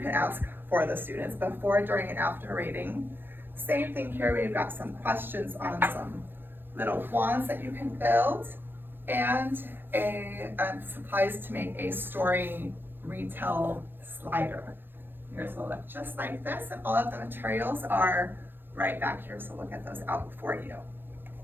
ask for the students before, during, and after rating. Same thing here, we've got some questions on some little wands that you can build, and supplies to make a story retell slider. Yours will look just like this, and all of the materials are right back here, so we'll get those out for you.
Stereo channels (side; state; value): left; late; 0.099 ms